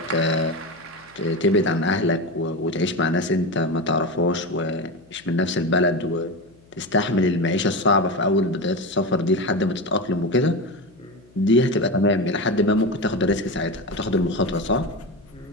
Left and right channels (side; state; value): left; noise; hum, 29 dB below the sound